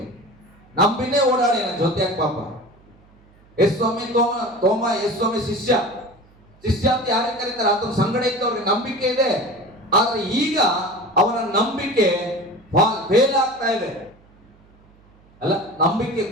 ನಂಬಿನೇ ಓಡಾಡಿ ಜೊತೆಯಾಗ ಪಾಪ. ಯೇಸು ಸ್ವಾಮಿ ತೋಮ ಯೇಸು ಸ್ವಾಮಿ ಶಿಷ್ಯ ಅಂತ ಯಾರಿಗೆ ಕರೀತಾರೆ, ಆತನ ಸಂಗಡ ಇದ್ದವ್ರಿಗೆ ನಂಬಿಕೆ ಇದೆ. ಆದ್ರೆ ಈಗ ಅವನ ನಂಬಿಕೆ ಫೇಲ್ ಆಗ್ತಾ ಇದೆ, ಅಲ್ಲ, ನಂಬಿಕೆ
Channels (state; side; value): noise; right; hum, 29 dB below the sound